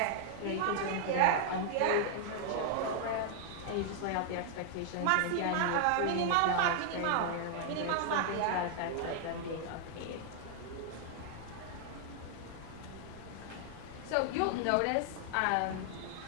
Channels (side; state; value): both; different; correlation 0.00